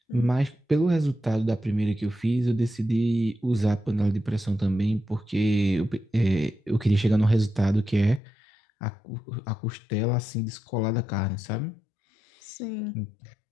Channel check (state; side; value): drops out; right; at 8.2 s